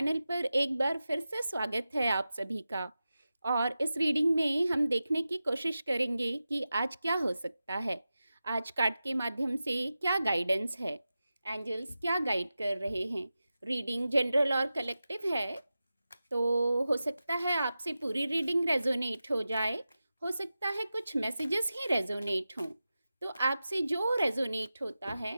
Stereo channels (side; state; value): both; inverted; correlation -0.93